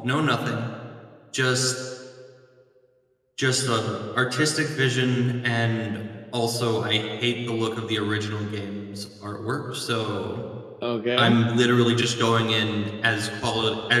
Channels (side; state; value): both; identical; correlation 1.00